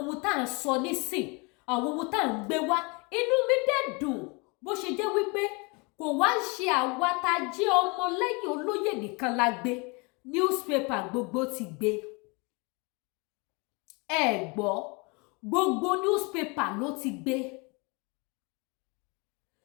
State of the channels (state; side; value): quieter; right; 29.6 dB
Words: ohun tá à ń sọ nísìn àwọn ohun tá à ń gbé wá inú mi dẹ̀ dùn bó ṣe jẹ́ wípé kò wá ń ṣe àwa tá a jẹ́ ọmọ lẹ́yìn Olóyè nìkan la gbé newspaper gbogbo ti gbé. Ẹ gbọ́ gbogbo newspaper ló ti gbé.